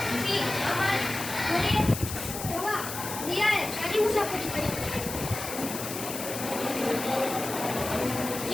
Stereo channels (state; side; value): noise; left; hiss, 7 dB below the sound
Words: थी अमर मुझे हुआ दिया है शादी मुसाफिरी पे